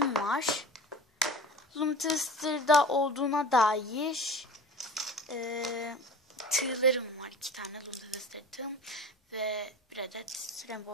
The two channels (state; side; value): normal; both; correlation 0.38